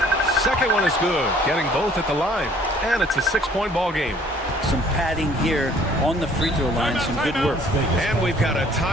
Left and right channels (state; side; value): normal; both; correlation 0.57